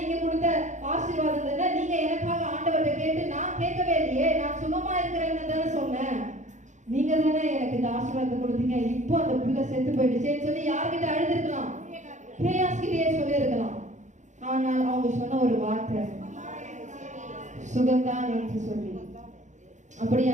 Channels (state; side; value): late; left; 0.35 ms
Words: கொடுத்த ஆசீர்வாதம் தானே, நீங்க எனக்காக ஆண்டவர்கிட்ட கேட்டு, நான் கேட்கவே இல்லையே, நான் சுகமா இருக்கிறேன்னு தானே சொன்னேன், நீங்க தானே எனக்கு இந்த ஆசீர்வாதத்தை கொடுத்தீங்க, இப்போ அந்த புள்ள செத்து போயிடுச்சேன்னு சொல்லி யார்கிட்ட அழுதுருக்கலாம்? கேயாஸ்கிட்டயே சொல்லி இருக்கலாம். ஆனால் அவங்க சொன்ன ஒரு வார்த்தை சுகந்தான் என்று சொல்லி.